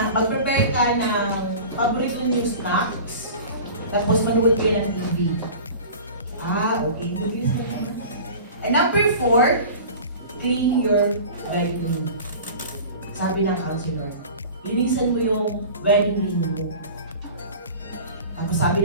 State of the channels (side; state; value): both; inverted; correlation -0.38